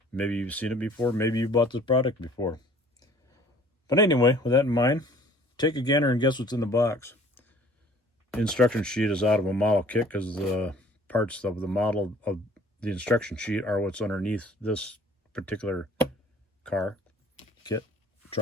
maybe you've seen it before, maybe you bought this product before. But anyway, with that in mind, take a gander and guess what's in the box. The instruction sheet is out of a model kit, because the parts of the model of the instruction sheet are what's underneath this particular car, kit,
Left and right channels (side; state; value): both; normal; correlation 0.53